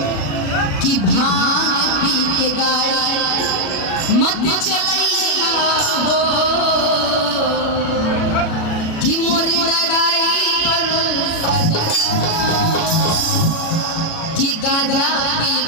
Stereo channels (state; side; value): late; right; 37 ms